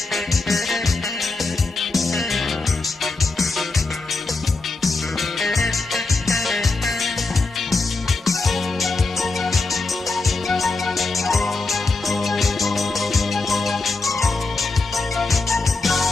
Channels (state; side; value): quieter; right; 3.6 dB